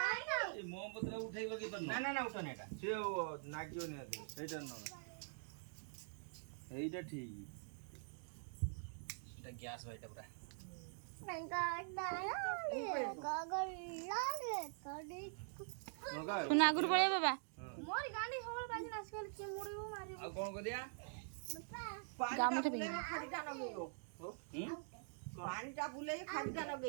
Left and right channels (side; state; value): left; silent; digital silence